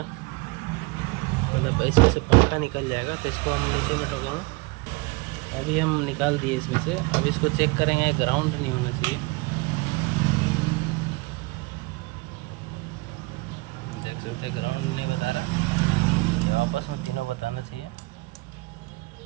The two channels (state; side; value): quieter; left; 25.5 dB